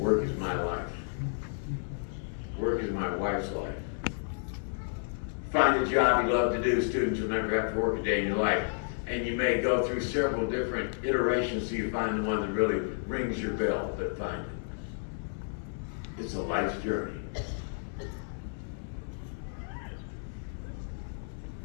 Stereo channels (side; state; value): right; silent; 57 dB below the other